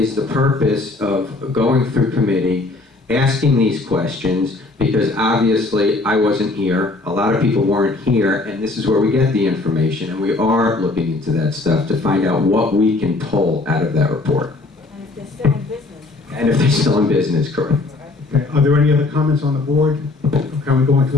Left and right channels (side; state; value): right; quieter; 3.2 dB